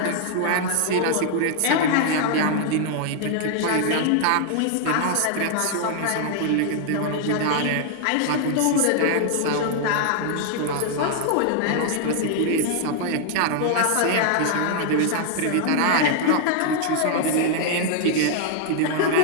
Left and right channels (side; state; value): both; different; correlation 0.00